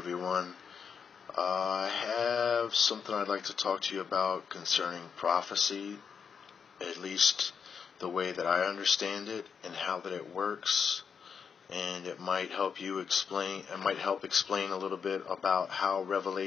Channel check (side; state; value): right; quieter; 6.6 dB